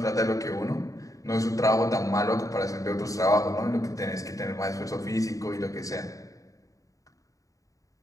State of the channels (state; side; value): late; right; 0.16 ms